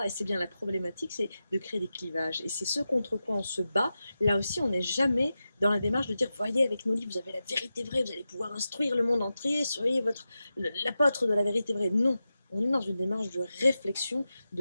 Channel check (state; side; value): inverted; both; correlation -0.92